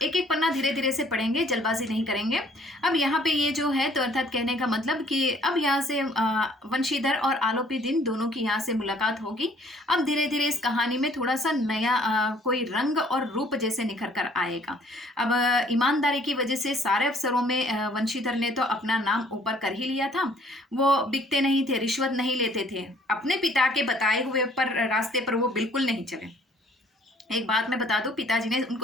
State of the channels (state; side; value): normal; both; correlation 0.59